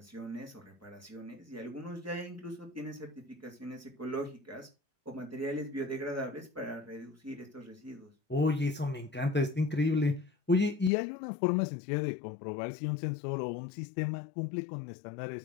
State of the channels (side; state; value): right; drops out; at 10.9 s